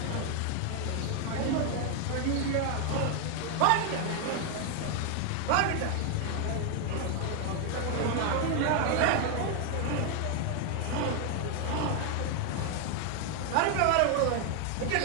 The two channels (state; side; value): different; both; correlation 0.01